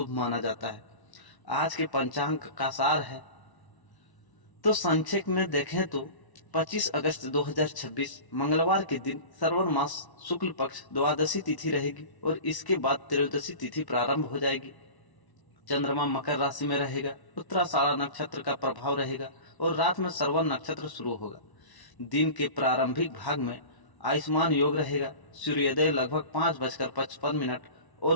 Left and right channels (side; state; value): right; late; 1.1 ms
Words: माना जाता है। आज के पंचांग का सार है तो संक्षेप में देखें तो 25 अगस्त 2026 मंगलवार के दिन श्रवण मास शुक्ल पक्ष द्वादशी तिथि रहेगी और इसके बाद त्रयोदशी तिथि प्रारंभ हो जाएगी। चंद्रमा मकर राशि में रहेगा, उत्तराषाढ़ा नक्षत्र का प्रभाव रहेगा और रात में श्रवण नक्षत्र शुरू होगा। दिन के प्रारंभिक भाग में आयुष्मान योग रहेगा। सूर्योदय लगभग 5:55